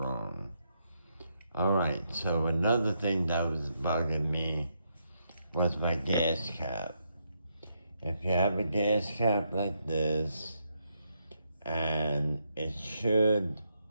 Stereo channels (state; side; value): inverted; both; correlation -0.79